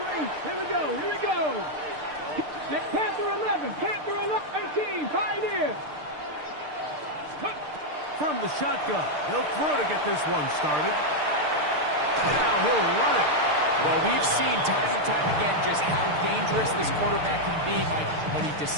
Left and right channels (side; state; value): left; late; 6.6 ms